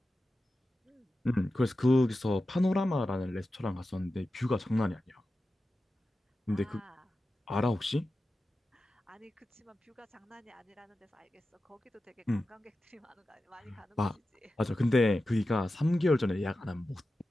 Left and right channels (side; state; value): both; normal; correlation 0.93